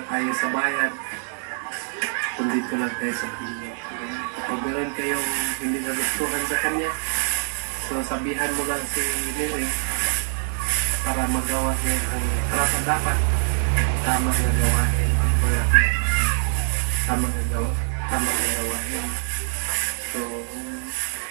tayo sa bayan. Kung dito lang tayo sa pinya. Kapag meron kayong hindi nagustuhan sa kanya, so sabihan mo lang si Neri para magawa niya ang karapat dapat. Tama na gawain. Tama na gawain. So,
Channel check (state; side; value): silent; left; digital silence